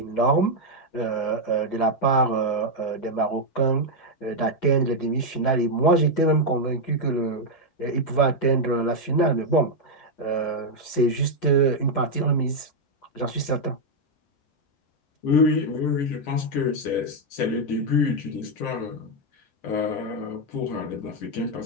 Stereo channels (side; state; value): right; late; 7.4 ms